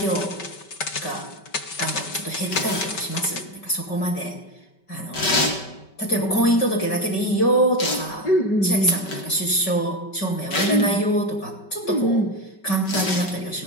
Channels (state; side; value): late; right; 5.2 ms